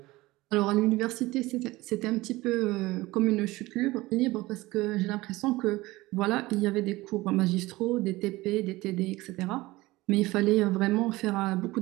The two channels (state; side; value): quieter; left; 19.7 dB